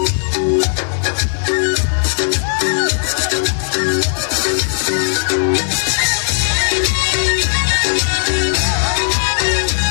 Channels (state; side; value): silent; right; digital silence